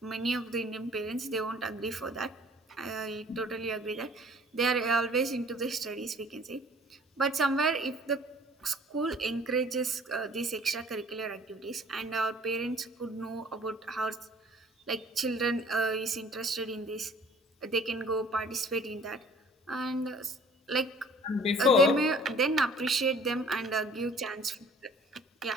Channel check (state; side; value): normal; both; correlation 0.52